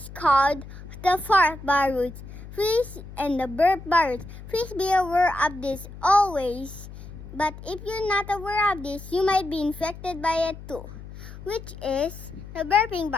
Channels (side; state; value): left; noise; hum, 14 dB below the sound